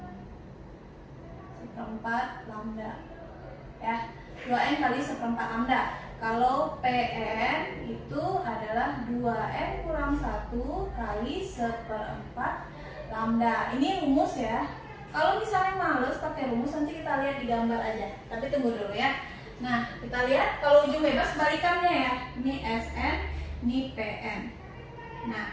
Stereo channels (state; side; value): identical; both; correlation 1.00